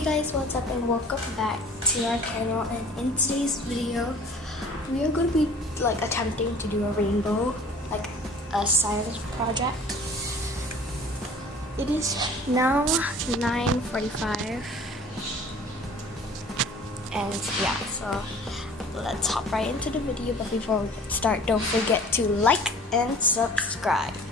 guys, what's up and welcome back to our channel, and in today's video we are going to be attempting to do a rainbow, like a science project. It is now 9:45 and yeah, so let's hop right into the video. But before we start, don't forget to like and subscribe.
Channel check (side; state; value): both; normal; correlation 0.48